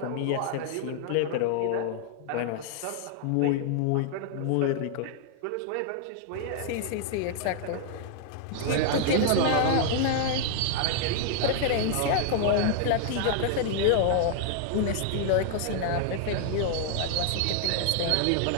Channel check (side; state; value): both; different; correlation -0.01